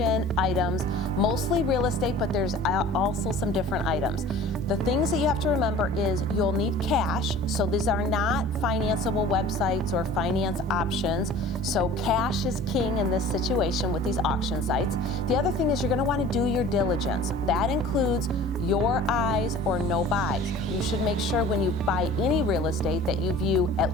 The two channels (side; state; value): both; normal; correlation 0.44